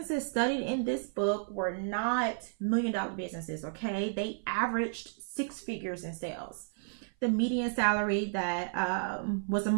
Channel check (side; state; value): left; silent; 55 dB below the other